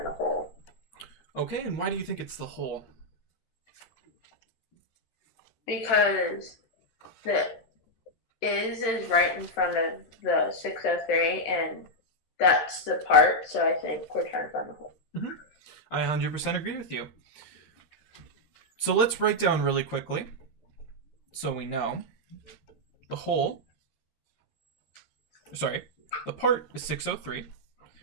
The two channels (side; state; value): right; late; 13 ms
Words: the whole. Okay, and why do you think it's the whole? Because the is right in front of the 603, and that's the part, so I think we're trying to find the whole. I 100% agree with you. So let's write down really quickly so we know. The whole, sorry, the part is 603,